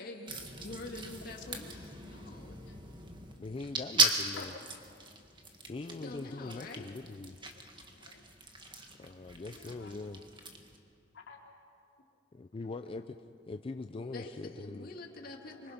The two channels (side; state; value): both; normal; correlation 0.22